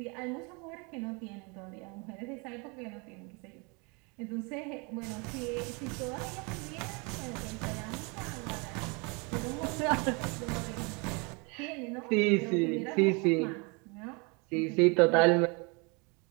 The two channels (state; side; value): quieter; left; 30.8 dB